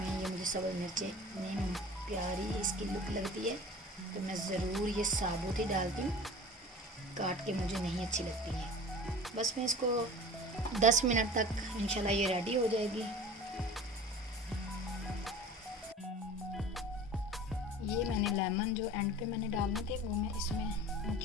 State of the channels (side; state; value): both; normal; correlation 0.40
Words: ये मुझे सब्ज़ मिर्चें इतनी प्यारी इसकी लुक लगती है तो मैं ज़रूर ये साबुत ही डालती हूँ, काट के मुझे नहीं अच्छी लगती हैं। बस मैं इसको 10 मिनट तक इंशाल्लाह ये रेडी हो जाएगी। ये मैंने लेमन जो एंड पे मैंने डालने थे वो मैं इसमें